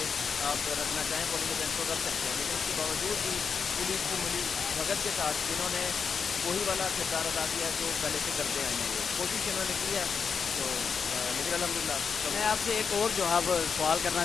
آپ رکھنا چاہیں پولنگ ایجنٹ کو رکھ سکتے ہیں، لیکن اس کے باوجود بھی پولیس کی ملی بھگت کے ساتھ انہوں نے وہی والا کردار ادا کیا جو پہلے سے کرتے آئے ہیں، یہ کوشش انہوں نے کی ہے، تو لیکن الحمدللہ سب۔ میں آپ سے ایک اور جو اب سوال کرنا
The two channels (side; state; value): right; quieter; 6.0 dB